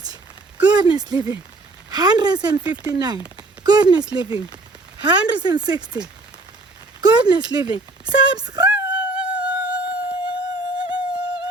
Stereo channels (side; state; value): left; quieter; 3.1 dB